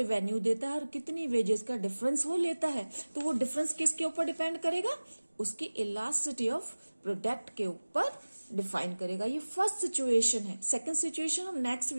देता है और कितनी वेजेस का डिफरेंस वो लेता है, तो वो डिफरेंस किसके ऊपर डिपेंड करेगा, उसकी इलास्टिसिटी ऑफ प्रोडक्ट के ऊपर डिफाइन करेगा। ये फर्स्ट सिचुएशन है। सेकंड सिचुएशन हम नेक्स्ट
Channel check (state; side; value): inverted; both; correlation -1.00